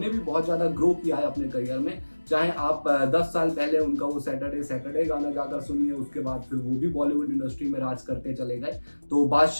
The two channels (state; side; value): inverted; both; correlation -1.00